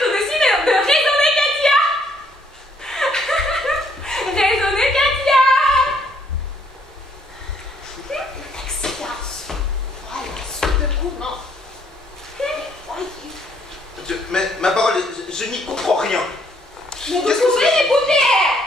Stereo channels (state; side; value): normal; both; correlation 0.68